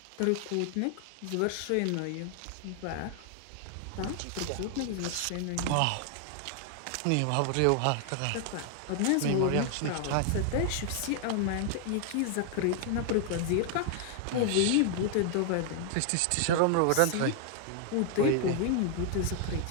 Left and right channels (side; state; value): both; different; correlation 0.00